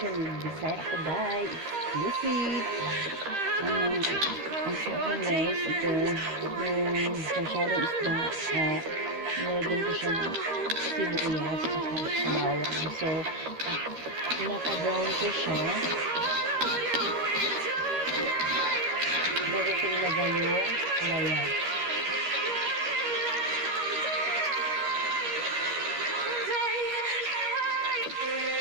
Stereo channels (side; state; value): left; late; 13 ms